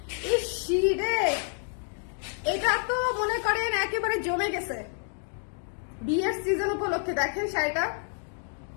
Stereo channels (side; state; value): right; silent; 56 dB below the other